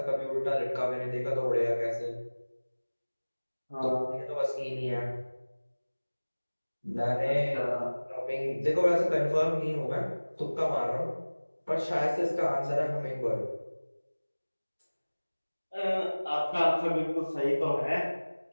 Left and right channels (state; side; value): inverted; both; correlation -1.00